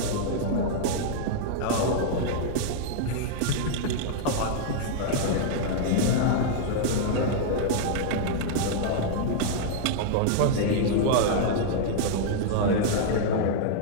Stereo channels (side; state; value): both; different; correlation -0.01